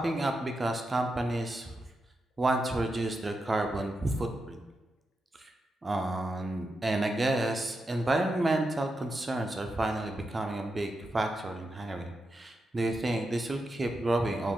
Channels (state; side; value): normal; both; correlation 0.87